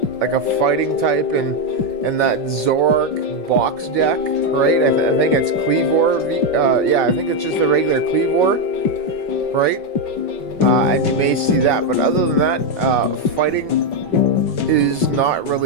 like a fighting type in that Zoroark box deck, right? I think it's Kleavor V. Yeah, I think it's just a regular Kleavor, right? And you may see that, but other than that, fighting is not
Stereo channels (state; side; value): late; right; 5.3 ms